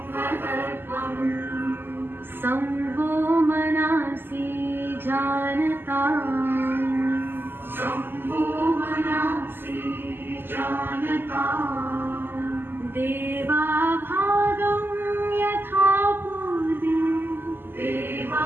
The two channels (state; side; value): late; left; 0.099 ms